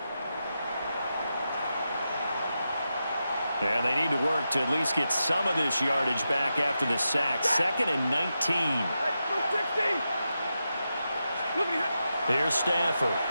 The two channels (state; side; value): inverted; both; correlation -0.88